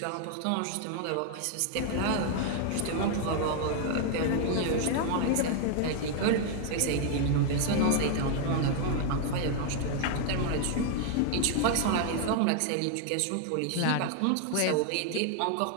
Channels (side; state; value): both; different; correlation 0.00